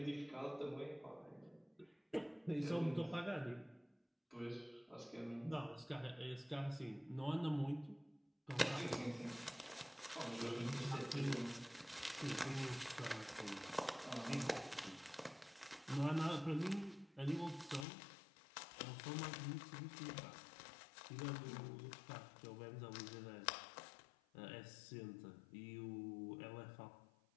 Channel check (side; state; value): right; drops out; at 17.9 s